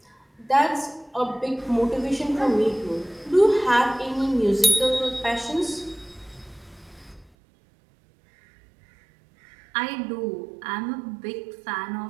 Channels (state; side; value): drops out; left; at 7.3 s